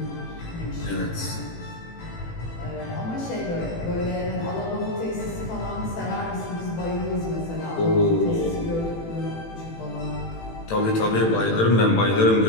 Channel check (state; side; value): late; right; 18 ms